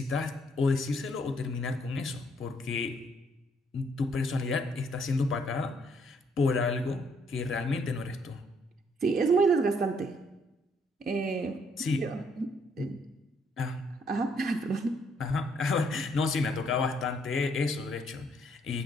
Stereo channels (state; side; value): normal; both; correlation 0.68